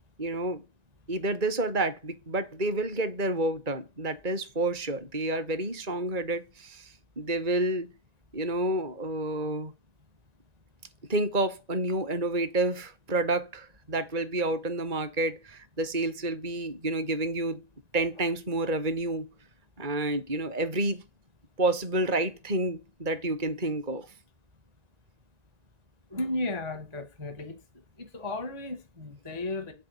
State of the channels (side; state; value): left; late; 1.9 ms